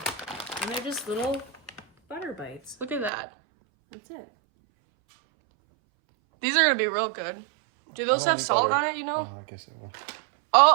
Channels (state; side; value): drops out; left; at 3.1 s